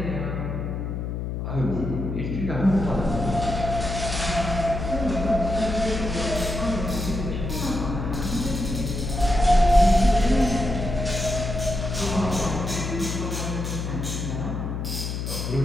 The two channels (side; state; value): left; noise; hum, 4 dB below the sound